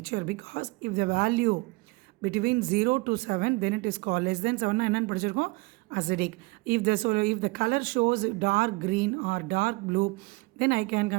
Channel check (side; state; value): left; quieter; 24.9 dB